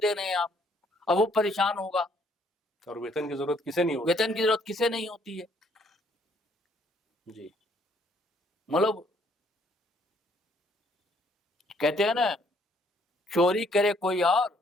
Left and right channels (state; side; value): normal; both; correlation 0.66